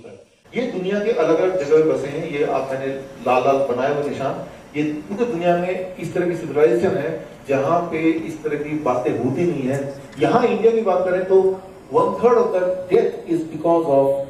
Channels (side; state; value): both; identical; correlation 1.00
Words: है। ये दुनिया के अलग अलग जगह बसे हैं। ये आप मैंने लाल लाल बनाए हुए निशान, ये पूरी दुनिया में इस तरह की सिविलाइजेशन है जहां पे इस तरह की बातें होती नहीं है। यहाँ इंडिया की बात करें तो 1/3 of the death is because